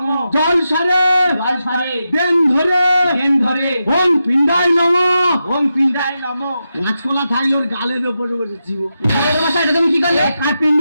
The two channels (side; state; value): both; inverted; correlation -0.88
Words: জল সারে, জল ছাড়ে। দেন ধরে, দেন ধরে। ওম পিণ্ডায় নমো। ওম পিণ্ডায় নম। কাঁচকলা থাইল ওর গালের ওপরে বসেছি। এটা তুমি কি করলে? কার